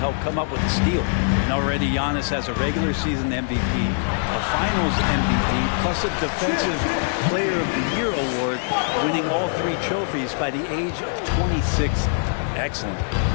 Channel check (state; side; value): silent; right; digital silence